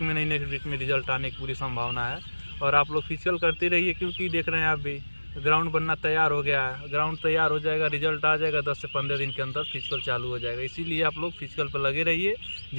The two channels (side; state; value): both; inverted; correlation -1.00